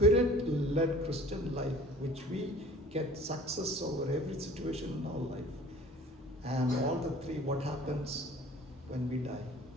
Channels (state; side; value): normal; both; correlation 0.47